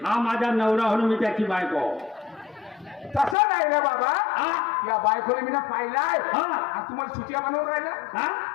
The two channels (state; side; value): drops out; right; at 3.4 s